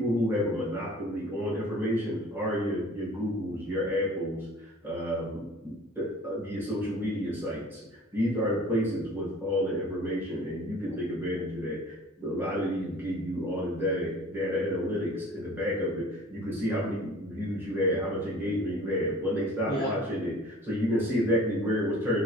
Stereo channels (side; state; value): both; normal; correlation 0.47